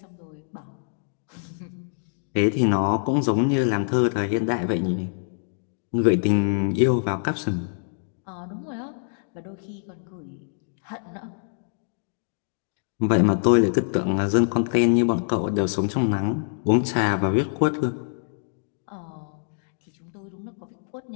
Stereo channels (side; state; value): right; silent; digital silence